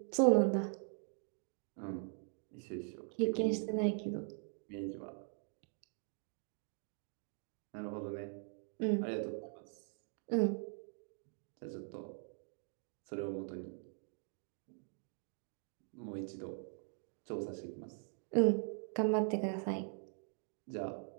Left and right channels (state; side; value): silent; left; 50 dB below the other